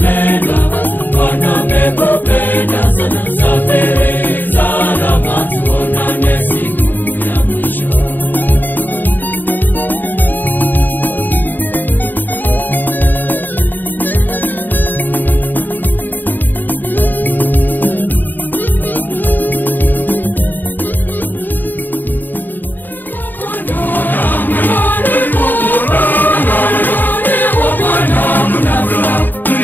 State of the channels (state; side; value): late; right; 0.090 ms